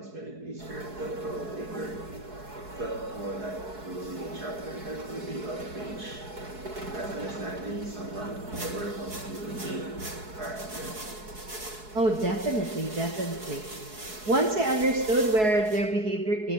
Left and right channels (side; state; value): left; late; 4.7 ms